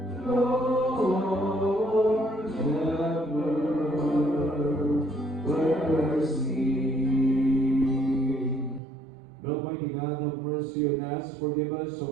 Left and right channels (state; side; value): drops out; left; at 8.8 s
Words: Lord, have mercy. Almighty God, have mercy on us, forgive us